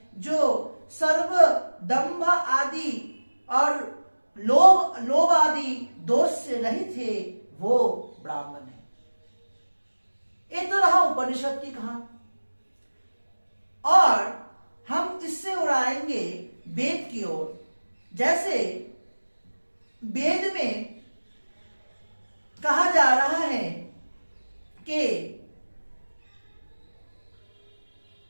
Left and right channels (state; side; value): inverted; both; correlation -1.00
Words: जो सर्व दंभ आदि और लोभ आदि दोष से रहित है, वो ब्राह्मण है। ये तो रहा उपनिषद की कहानी। और हम इससे उड़ाएंगे वेद की ओर। जैसे वेद में कहा जा रहा है कि